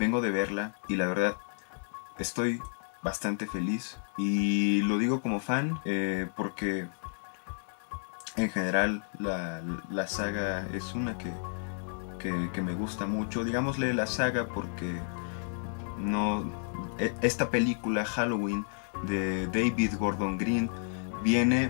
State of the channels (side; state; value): right; silent; digital silence